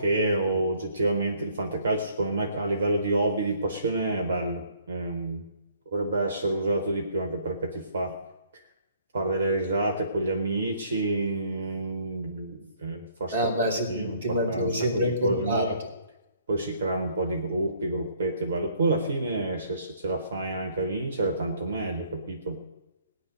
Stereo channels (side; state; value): both; inverted; correlation -0.62